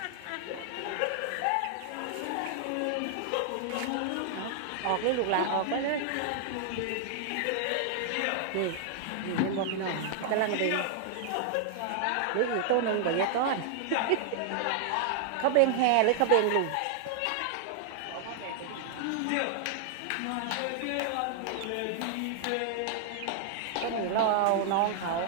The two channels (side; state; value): both; different; correlation -0.01